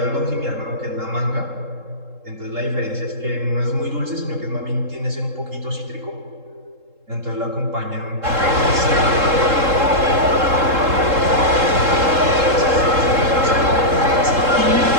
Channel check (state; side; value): late; left; 3.7 ms